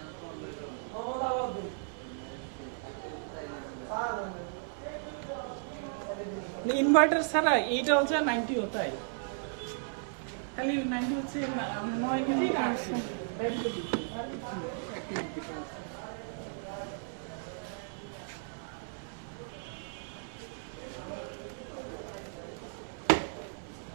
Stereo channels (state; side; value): silent; left; 55 dB below the other